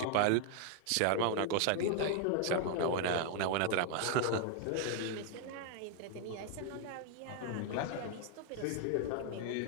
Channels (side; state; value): both; different; correlation 0.00